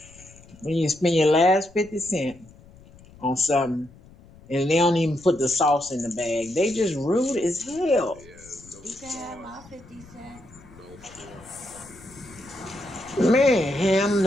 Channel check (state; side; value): noise; left; rumble, 23 dB below the sound